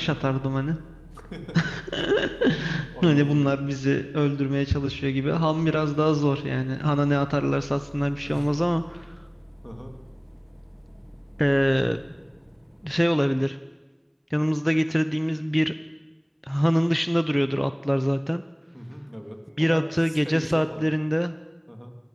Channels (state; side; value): identical; both; correlation 1.00